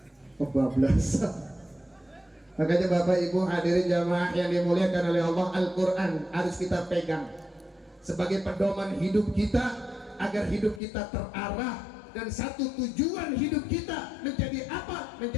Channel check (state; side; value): drops out; right; at 10.8 s